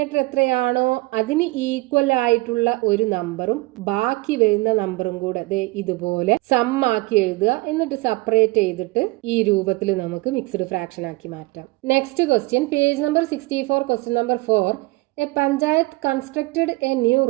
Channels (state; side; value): quieter; left; 22.8 dB